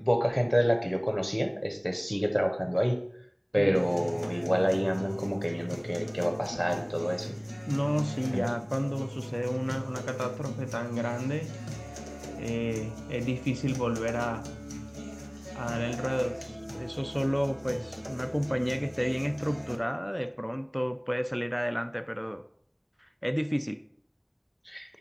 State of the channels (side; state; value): both; identical; correlation 1.00